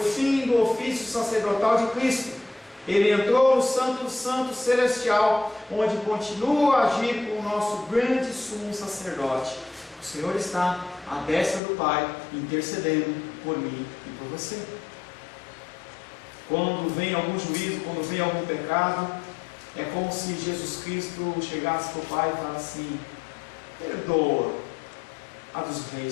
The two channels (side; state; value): right; drops out; at 11.6 s